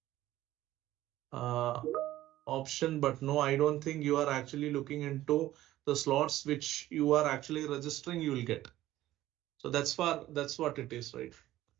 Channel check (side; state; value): left; quieter; 14.8 dB